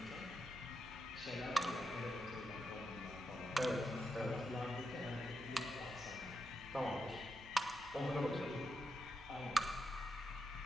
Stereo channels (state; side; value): noise; right; hum, 19 dB below the sound